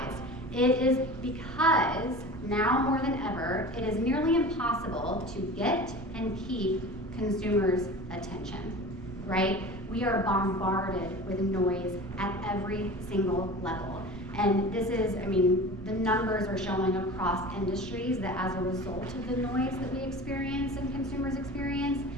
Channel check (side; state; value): right; noise; rumble, 17 dB below the sound